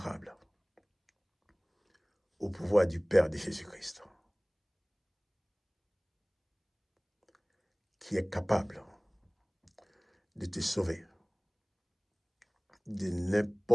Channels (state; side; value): identical; both; correlation 1.00